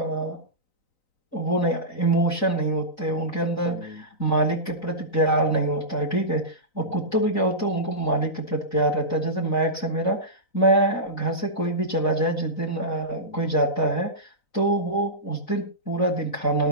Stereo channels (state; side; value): late; right; 3.9 ms